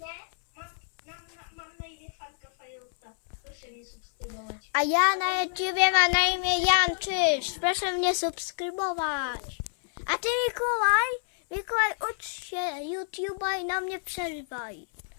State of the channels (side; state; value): right; silent; 59 dB below the other